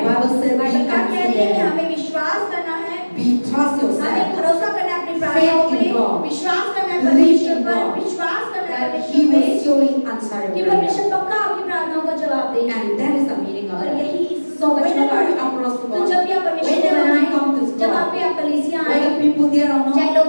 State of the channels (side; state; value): both; inverted; correlation -1.00